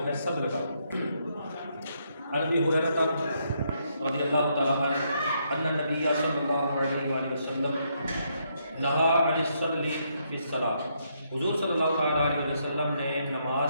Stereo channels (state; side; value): inverted; both; correlation -0.75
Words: ہے صدر کا. عن ابی ہریرہ رضی اللہ تعالیٰ عنہ ان النبی صلی اللہ علیہ وآلہ وسلم نہا عن الصدر فی الصلاۃ. حضور صلی اللہ تعالیٰ علیہ وسلم نے نماز